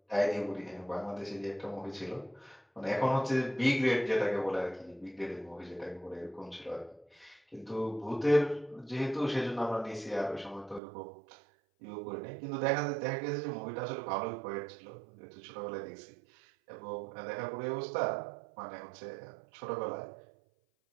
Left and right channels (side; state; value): left; drops out; at 10.8 s